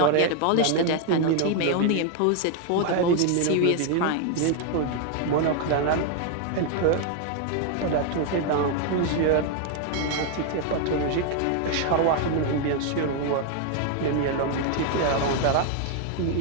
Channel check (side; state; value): both; different; correlation 0.00